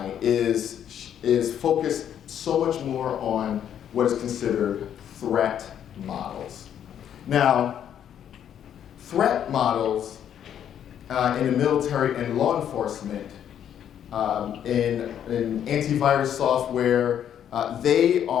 is focused so much more on what is considered threat models. Now, threat models in the military and law enforcement, in antivirus software, they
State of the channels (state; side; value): quieter; right; 9.6 dB